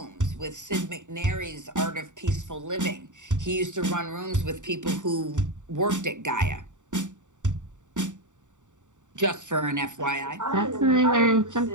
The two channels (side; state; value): left; late; 0.86 ms